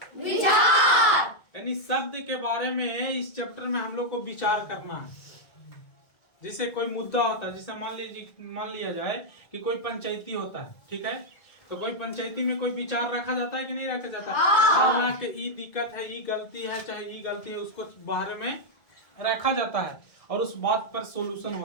विचार यानी शब्द के बारे में इस चैप्टर में हम लोग को विचार करना है। जैसे कोई मुद्दा होता है, जैसे मान लिया जाए कि कोई पंचायती होता है, ठीक है, तो कोई पंचायती में कोई विचार रखा जाता है कि नहीं रखा जाता है कि ई दिक्कत है, ई गलती है, चाहे ई गलती है, उसको बाहर में रखा जाता है और उस बात पर सॉल्यूशन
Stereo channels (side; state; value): right; late; 1.9 ms